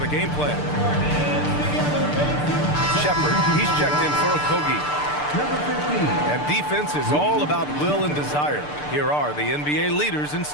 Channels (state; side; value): late; right; 6.8 ms